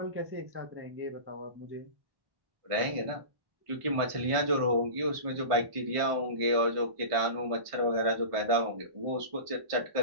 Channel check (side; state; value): left; late; 1.5 ms